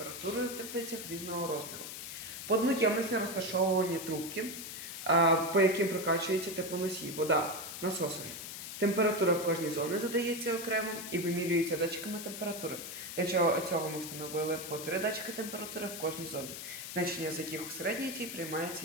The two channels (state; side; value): noise; left; hiss, 8 dB below the sound